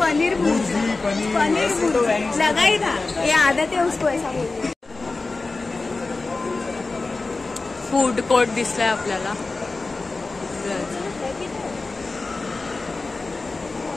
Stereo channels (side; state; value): right; quieter; 3.6 dB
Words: लगाई था, ये आदत है उसको ऐसा बोलने. फूड कोर्ट दिसलाय आपल्याला.